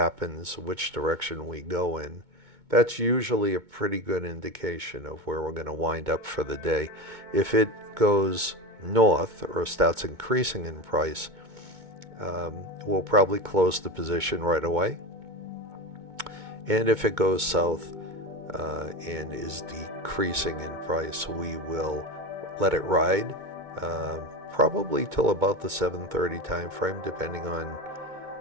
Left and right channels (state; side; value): late; left; 2.2 ms